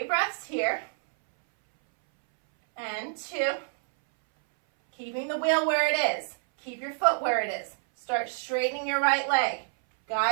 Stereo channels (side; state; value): left; silent; 59 dB below the other